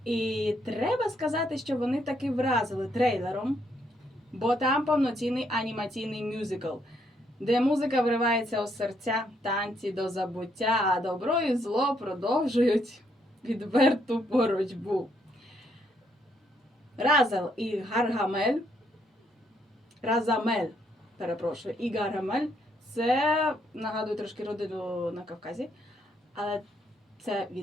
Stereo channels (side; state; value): both; normal; correlation 0.73